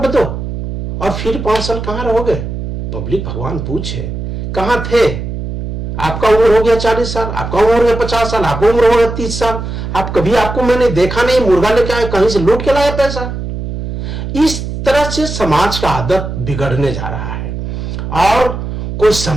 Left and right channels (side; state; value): right; noise; hum, 6 dB below the sound